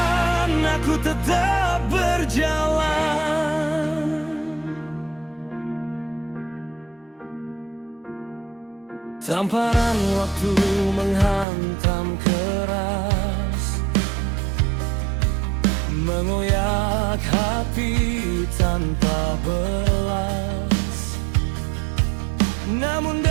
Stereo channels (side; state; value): left; drops out; at 11.5 s